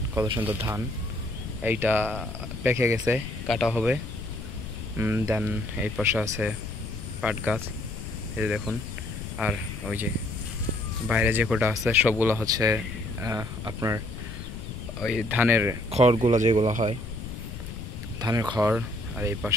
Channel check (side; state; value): left; noise; rumble, 8 dB below the sound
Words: কত সুন্দর ধান। এইটা পেকে গেছে, কাটা হবে। দেন এই পাশে আছে পাট গাছ, এই যে দেখুন। আর ওই যে বাইরে যে কোটা আছে সবগুলো হচ্ছে আপনার ওই ধানের খড়গুলো যেগুলো হয়, ধানের খড়। আর এই